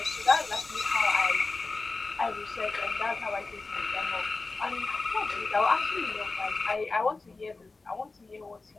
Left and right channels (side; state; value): right; quieter; 3.7 dB